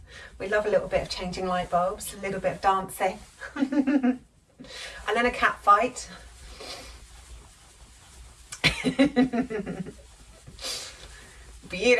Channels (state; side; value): identical; both; correlation 1.00